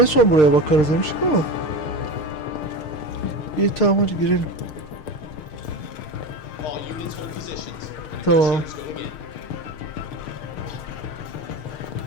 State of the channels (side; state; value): right; late; 6.5 ms